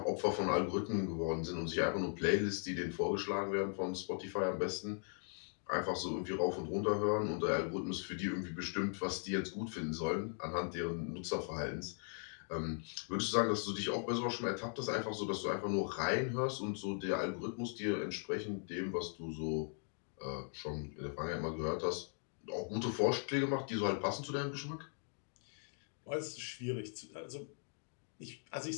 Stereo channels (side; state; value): right; silent; 52 dB below the other